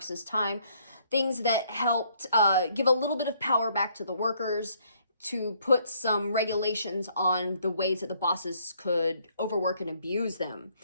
time, things that helped give a little bit of power back to the workers, to put some regulations on the ways that the bosses could overwork and abuse them.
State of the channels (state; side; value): inverted; both; correlation -0.66